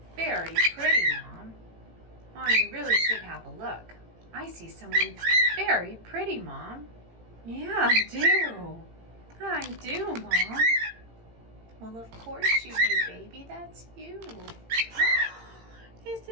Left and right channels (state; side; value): late; left; 18 ms